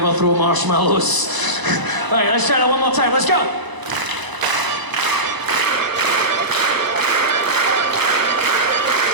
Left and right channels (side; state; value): left; late; 1.0 ms